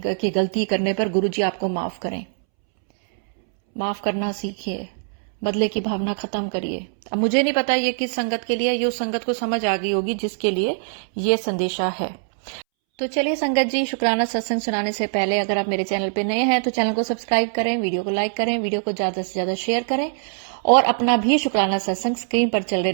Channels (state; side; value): silent; left; 64 dB below the other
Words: गलती करने पर गुरुजी आपको माफ करें। माफ करना सीखिए, बदले की भावना खत्म करिए। अब मुझे नहीं पता ये किस संगत के लिए, ये उस संगत को समझ आ गई होगी जिसके लिए ये संदेशा है। तो चलिए संगत जी, शुक्राना सत्संग सुनाने से पहले अगर आप मेरे चैनल पे नए हैं तो चैनल को सब्सक्राइब करें, वीडियो को लाइक करें, वीडियो को ज्यादा से ज्यादा शेयर करें, और अपना भी शुक्राना सत्संग स्क्रीन पर चल रहे